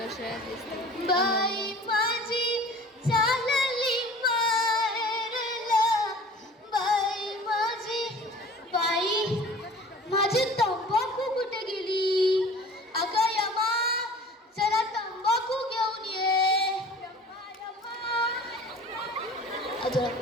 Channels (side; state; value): both; normal; correlation 0.45